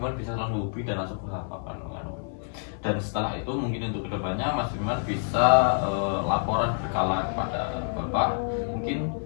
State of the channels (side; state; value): right; silent; 60 dB below the other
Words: bisa langsung hubungi dan langsung berhadapan dan setelah itu mungkin untuk kedepannya Mas Firman bisa laporan berkala kepada Bapak mungkin